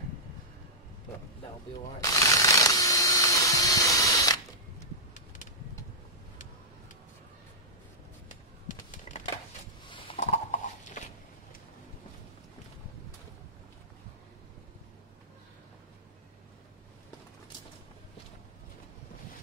but that'll be alright.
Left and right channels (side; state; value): both; normal; correlation -0.11